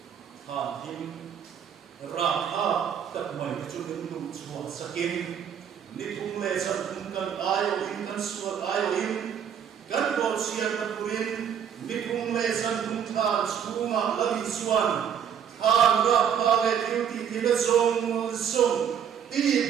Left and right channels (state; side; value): quieter; left; 8.4 dB